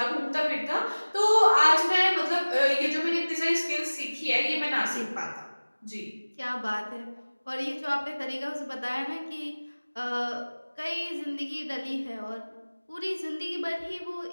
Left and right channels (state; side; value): inverted; both; correlation -1.00